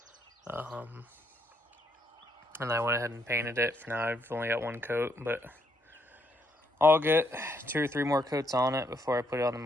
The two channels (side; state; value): both; normal; correlation 0.74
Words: And I went ahead and painted it. For now, I've only got one coat, but I'll get 2 or 3 more coats on it before I put it on the